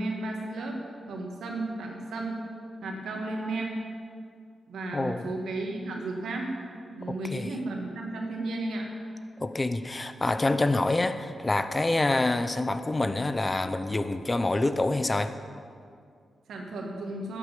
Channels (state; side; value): normal; both; correlation 0.93